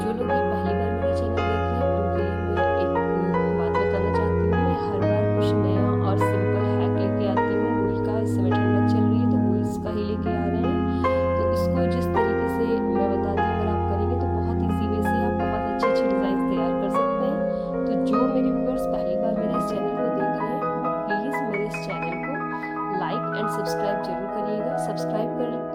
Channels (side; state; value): both; identical; correlation 1.00